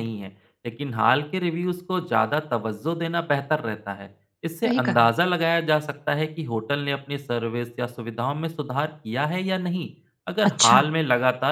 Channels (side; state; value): both; identical; correlation 1.00